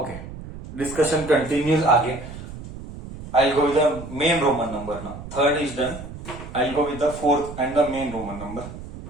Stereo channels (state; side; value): noise; right; rumble, 12 dB below the sound